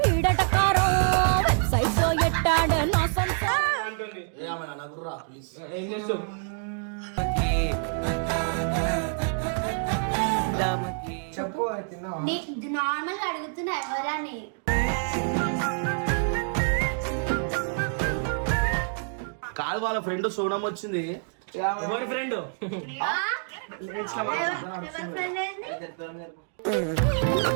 ఈడటకారో వెబ్సైట్ లో ఎట్టాడు నా సొంత అంటుంది. ప్లీజ్ ఏం చేస్తావు? చెప్పు తిన్నావా? నార్మల్ గా అడుగుతున్నా ఎవరని. కాదు వాళ్ళ ఫ్రెండ్ సోనం వచ్చింది. ఎవరి ఫ్రెండ్? ఎవరి ఫ్రెండ్ ఏంది?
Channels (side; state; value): left; silent; 59 dB below the other